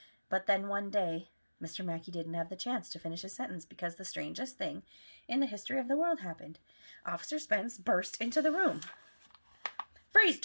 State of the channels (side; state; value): both; inverted; correlation -1.00